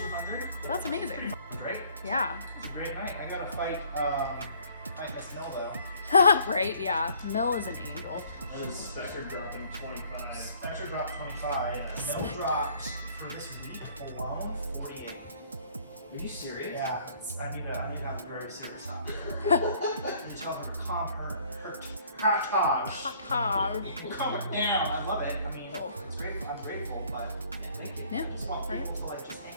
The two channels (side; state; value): both; inverted; correlation -0.58